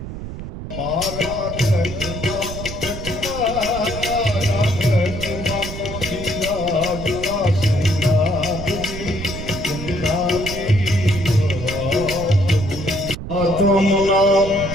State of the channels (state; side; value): noise; right; rumble, 8 dB below the sound